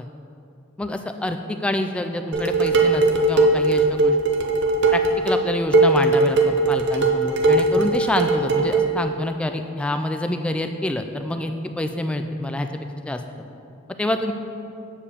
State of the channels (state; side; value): normal; both; correlation 0.27